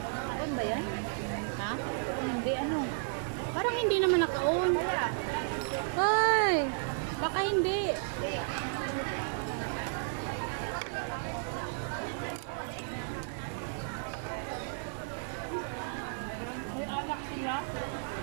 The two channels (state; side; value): silent; left; 56 dB below the other